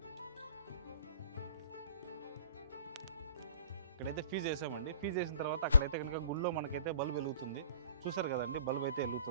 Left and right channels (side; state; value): both; inverted; correlation -0.51